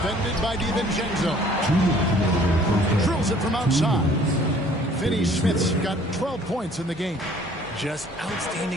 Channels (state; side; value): normal; both; correlation 0.56